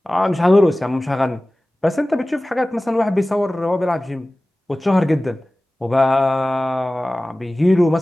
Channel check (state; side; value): normal; both; correlation 0.97